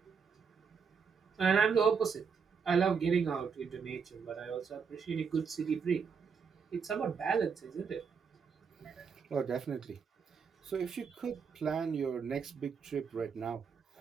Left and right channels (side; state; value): left; quieter; 6.0 dB